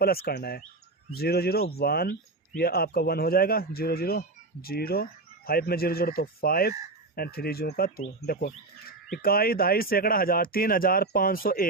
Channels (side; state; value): left; quieter; 3.3 dB